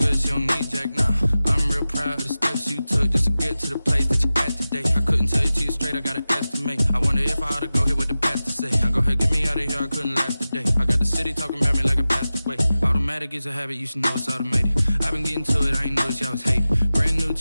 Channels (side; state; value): both; inverted; correlation -0.95